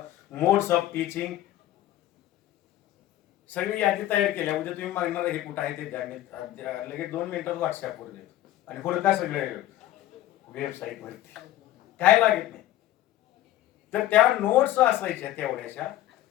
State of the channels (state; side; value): quieter; right; 13.9 dB